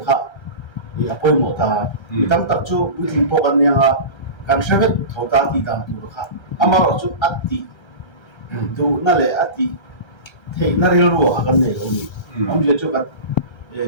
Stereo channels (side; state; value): right; late; 1.3 ms